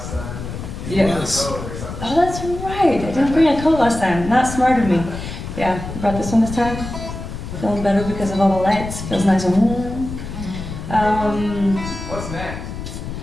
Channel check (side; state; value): left; noise; rumble, 8 dB below the sound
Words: time. Yeah. Yes. Oh, that's right. I didn't bring a coat last time. Not smart of me. Yeah, brought this one this time. Feeling better because of all the lights. Feels nice and warm. What's next?